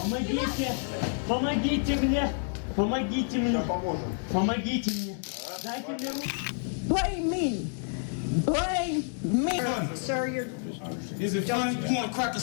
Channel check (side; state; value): right; silent; 59 dB below the other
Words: Помогите мне! Помогите мне! Помогите мне! Дайте мне руку! Blame me! Blame me! Sir, you're... Is it fun? You want to crack a